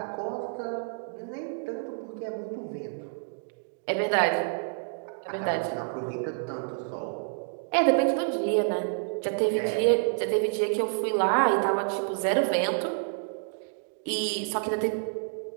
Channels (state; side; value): silent; left; digital silence